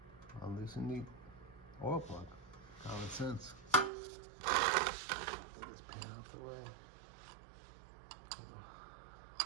unloosen the oil plug. Common sense. Get this pan out the way.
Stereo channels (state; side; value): drops out; left; at 3.9 s